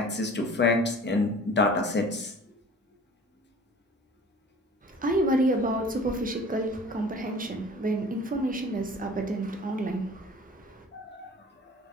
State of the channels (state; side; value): normal; both; correlation 0.45